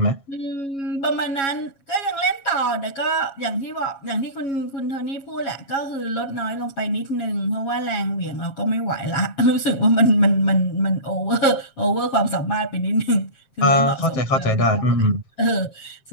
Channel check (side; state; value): right; late; 7.3 ms